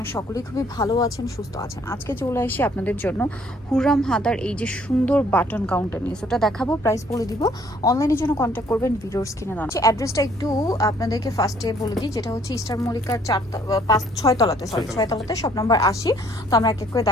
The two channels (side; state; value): both; normal; correlation 0.61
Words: সকলেই খুবই ভালো আছেন, সুস্থ আছেন। আজকে চলে আসি আপনাদের জন্য হুররাম হাতার এই যে সুন্দর বাটন কাউন্টার নিয়ে, ওটা দেখাবো, প্রাইস বলে দিব। অনলাইনের জন্য কন্ট্যাক্ট করবেন, ভিডিওস কিনে দেওয়া। অ্যাড্রেসটা একটু আপনাদেরকে ফার্স্টে বলে দিই, যেটা হচ্ছে ইস্টার মল্লিকার 6 তলাতে শপ নাম্বার 80। তো আমরা এক এক করে